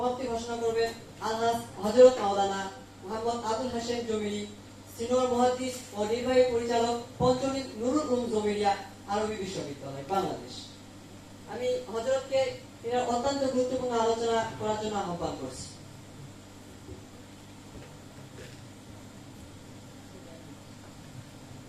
সমাপ্তি ঘোষণা করবেন আলহাজ হযরত মাওলানা মোহাম্মদ আবুল হাশেম জমিরি, সিনিয়র মুহাদ্দিস ও নির্বাহী পরিচালক পঞ্চনীত নুরুল উলুম জমিরিয়া আরবি বিশ্ববিদ্যালয় বাংলাদেশ। আমি হযরতকে এর অত্যন্ত গুরুত্বপূর্ণ আলোচনা করার জন্য আহ্বান করছি।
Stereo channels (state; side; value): identical; both; correlation 1.00